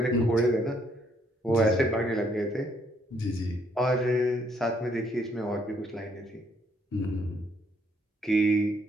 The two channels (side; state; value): both; normal; correlation 0.69